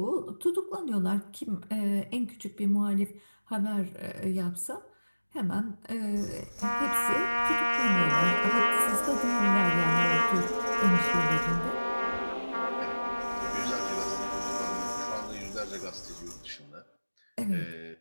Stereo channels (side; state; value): both; inverted; correlation -1.00